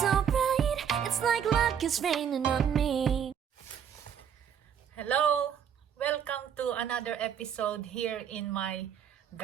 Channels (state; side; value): quieter; left; 8.3 dB